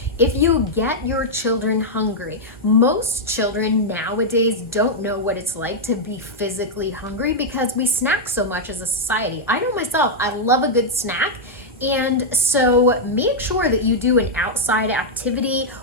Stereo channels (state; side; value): normal; both; correlation -0.04